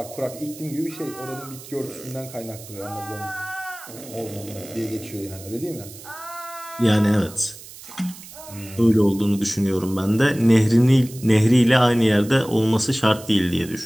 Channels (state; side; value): noise; right; hiss, 17 dB below the sound